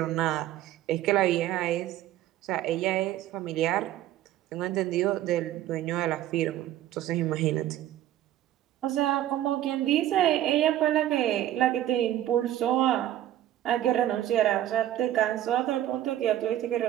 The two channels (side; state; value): left; quieter; 12.8 dB